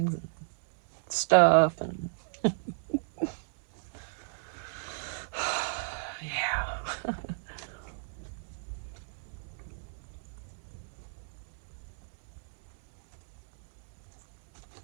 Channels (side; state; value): left; silent; digital silence